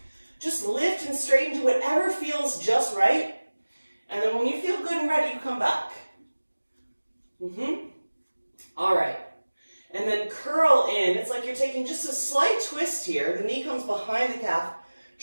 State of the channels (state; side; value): inverted; both; correlation -1.00